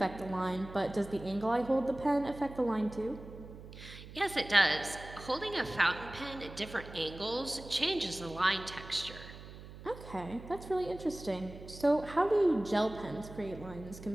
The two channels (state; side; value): noise; right; hum, 15 dB below the sound